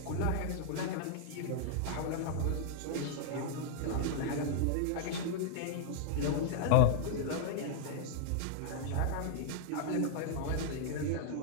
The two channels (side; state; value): both; different; correlation 0.00